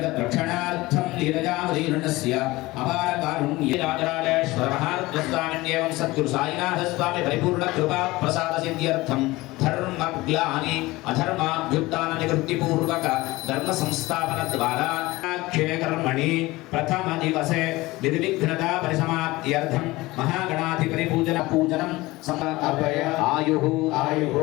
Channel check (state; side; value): quieter; right; 20.1 dB